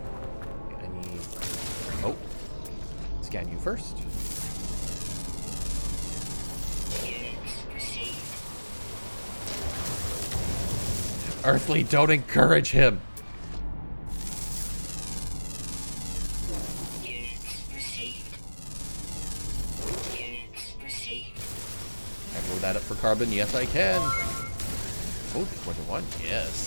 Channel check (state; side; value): inverted; both; correlation -1.00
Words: I need... Oh. Scan you first. Units received. Earthly, don't encourage him. Units received. Units received. Can I blow that up for carbon? Yes, I can. Oh, there's more than one.